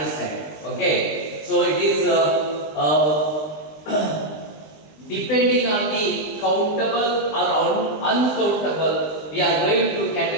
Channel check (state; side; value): late; right; 20 ms